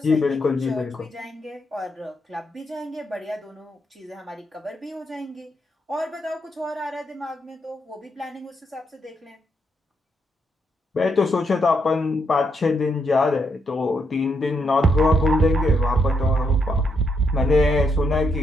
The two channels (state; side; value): normal; both; correlation 0.78